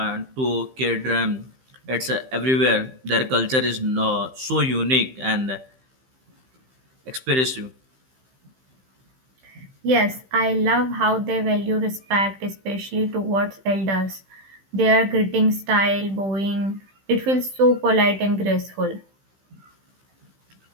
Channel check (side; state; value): left; late; 15 ms